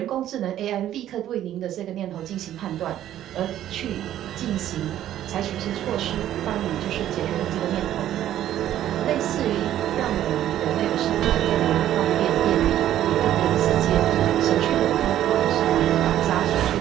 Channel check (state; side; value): quieter; left; 12.0 dB